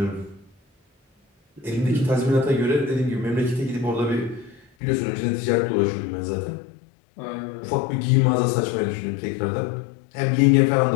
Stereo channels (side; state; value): right; drops out; at 4.7 s